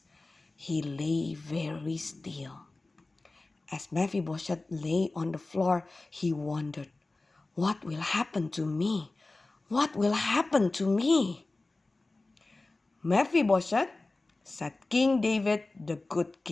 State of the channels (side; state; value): right; quieter; 3.2 dB